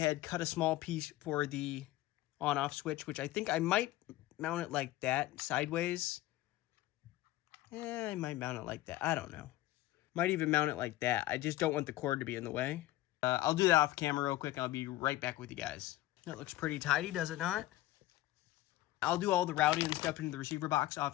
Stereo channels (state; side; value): quieter; right; 16.4 dB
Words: cut a small piece for the on-off switch, which I think I might mount it like that, sideways. I might mount it like that. I don't know. Might even mount it like that. I just don't want the cord to be in the way. I'll do that off camera real quick, and I'll be right back with you guys. That looks pretty tidy, does it not? I'll do all the routing and stuff into the receiver box